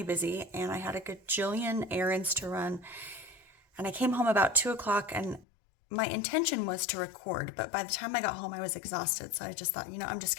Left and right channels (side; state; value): right; drops out; at 5.5 s